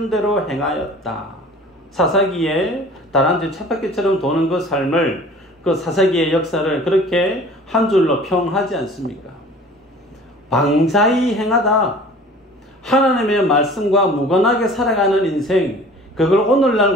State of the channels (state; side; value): normal; both; correlation 0.45